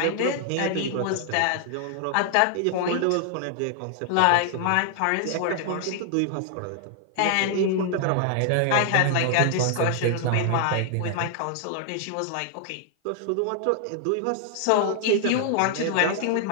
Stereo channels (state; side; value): different; both; correlation 0.00